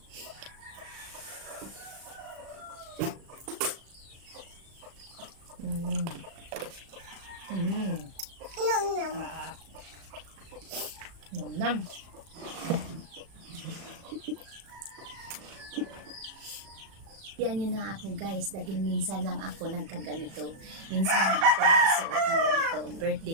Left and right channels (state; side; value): late; left; 36 ms